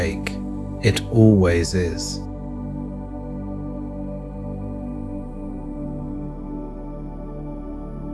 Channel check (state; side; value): identical; both; correlation 1.00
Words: It always is.